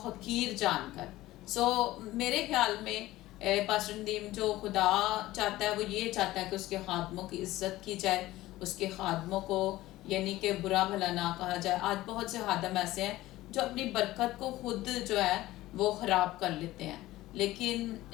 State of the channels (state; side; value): quieter; right; 16.7 dB